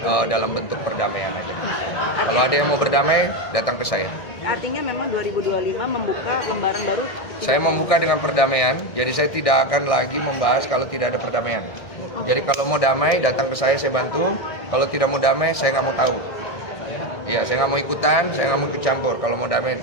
dalam bentuk perdamaian aja. Kalau ada yang mau berdamai, datang ke saya. Artinya memang 2025 membuka lembaran baru. Saya membuka dengan perdamaian, jadi saya tidak akan lagi membahas kalau tidak ada perdamaian. Jadi kalau mau damai, datang ke saya bantu. Kalau tidak mau damai, saya nggak mau tahu. Iya, saya nggak mau ikutan, saya nggak mau ikut campur. Kalau mau damai,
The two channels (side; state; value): right; late; 1.6 ms